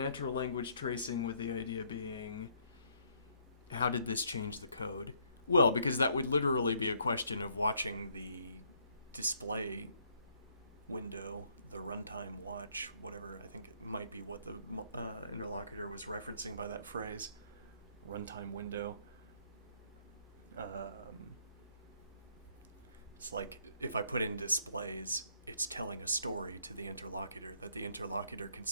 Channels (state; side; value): inverted; both; correlation -0.67